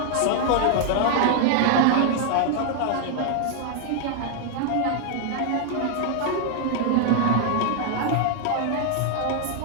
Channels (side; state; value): both; different; correlation 0.00